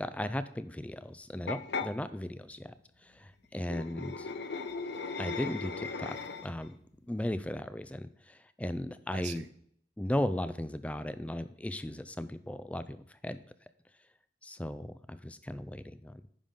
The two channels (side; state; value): both; normal; correlation 0.76